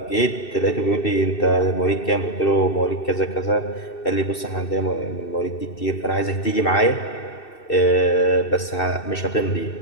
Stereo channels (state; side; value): late; right; 2.7 ms